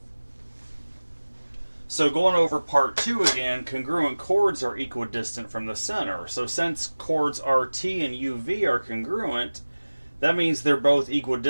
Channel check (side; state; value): both; inverted; correlation -1.00